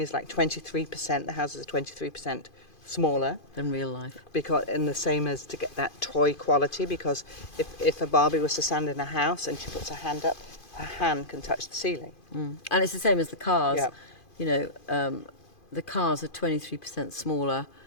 like 23%. The houses are 23% smaller, Than real life. because, and the same as to get that toy quality. Because if a Barbie was to stand in a house and she puts her hand up, her hand can touch the ceiling. And it's the same as the cars. Yeah. You know, the cars are 23% smaller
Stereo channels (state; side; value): late; right; 2.5 ms